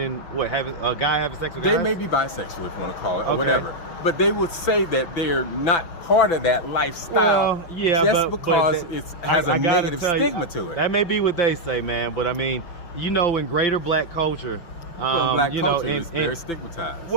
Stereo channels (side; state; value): right; late; 5.9 ms